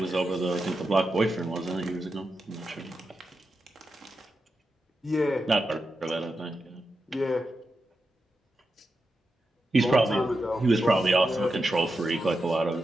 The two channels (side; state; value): both; normal; correlation 0.88